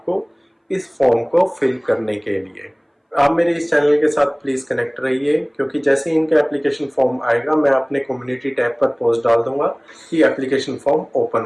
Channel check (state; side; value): identical; both; correlation 1.00